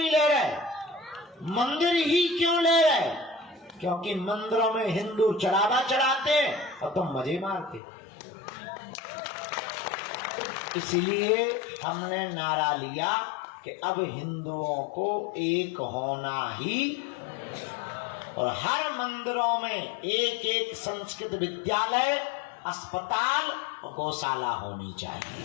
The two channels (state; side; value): drops out; right; at 7.8 s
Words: ले रहे? मंदिर ही क्यों ले रहे? क्योंकि मंदिरों में हिंदू चढ़ावा चढ़ाते हैं और तुम मजे मारते। इसलिए हमने नारा लिया कि अब हिंदुओं को एक होना ही, और हर मंदिरों में एक एक संस्कृत विद्यालय, अस्पताल और गौशाला होनी चाहिए।